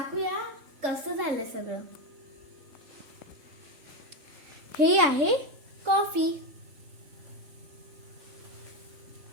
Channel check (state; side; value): late; left; 3.6 ms